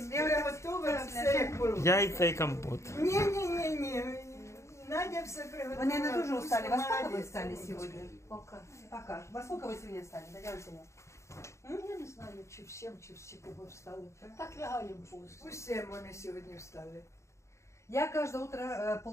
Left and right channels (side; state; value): right; late; 0.14 ms